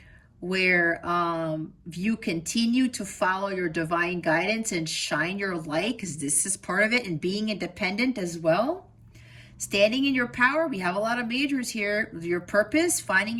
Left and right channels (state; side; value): identical; both; correlation 1.00